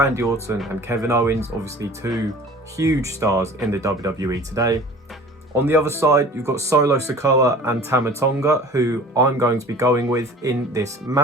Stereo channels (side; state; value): both; normal; correlation 0.44